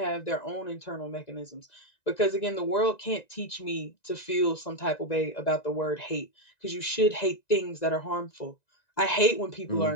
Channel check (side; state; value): right; late; 1.9 ms